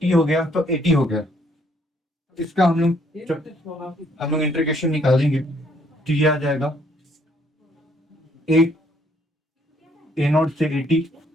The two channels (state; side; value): normal; both; correlation 0.67